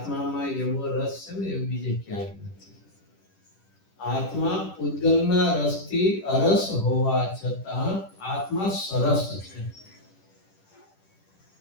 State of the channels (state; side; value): late; right; 10 ms